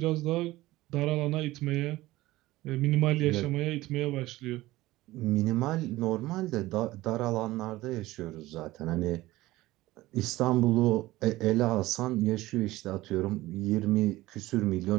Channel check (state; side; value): quieter; left; 17.8 dB